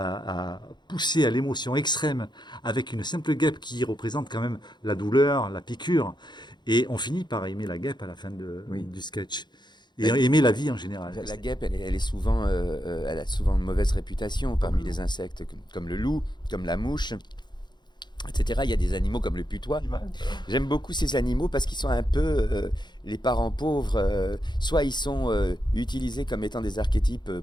pousser à l'émotion extrême avec une simple guêpe qui représente quand même la douleur, la piqûre. Et on finit par aimer la guêpe à la fin du sketch. Et aimer la vie en général. La guêpe, elle est souvent, elle a souvent une mauvaise réputation parmi les insectes, comme le loup, comme la mouche, etc. Il y a des animaux comme le putois. J'aime beaucoup ces animaux parce qu'ils sont un peu les parents pauvres. Soit ils sont utilisés comme étant des archétypes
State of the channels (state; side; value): late; right; 0.21 ms